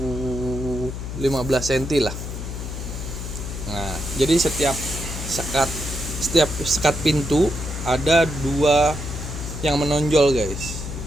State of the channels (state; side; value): noise; left; hum, 7 dB below the sound